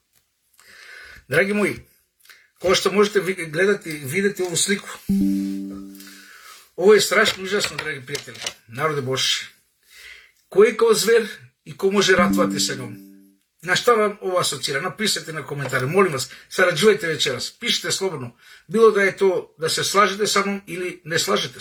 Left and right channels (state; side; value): identical; both; correlation 1.00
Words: Dragi moji, kao što možete gledati, vidjeti ovu sliku, ovo je strašno užasno, dragi prijatelji, narode Božji. Ko je kao zver i ko može ratovati sa njom? Na šta vam ovo asocira? Napišite na komentare, molim vas, sarađujte večeras, pišite slobodno. Bilo da je to da se slažete sa mnom ili ne slažete